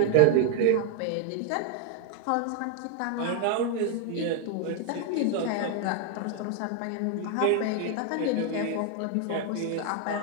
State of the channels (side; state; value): both; different; correlation 0.00